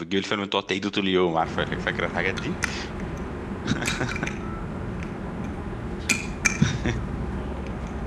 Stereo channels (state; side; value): identical; both; correlation 1.00